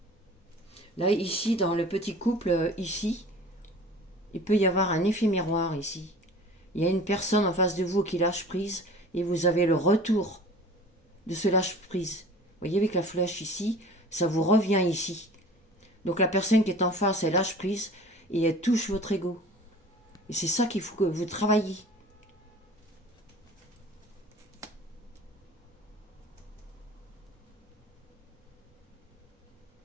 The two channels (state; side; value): normal; both; correlation 0.43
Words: Là, ici, dans le petit couple, ici, il peut y avoir un effet miroir ici. Il y a une personne en face de vous qui lâche prise et vous avez le retour de ce lâche prise. Vous voyez avec la flèche ici, ça vous revient ici. Donc la personne qui est en face, elle lâche prise et elle touche votre ego. Et c'est ça qu'il faut que vous travailliez.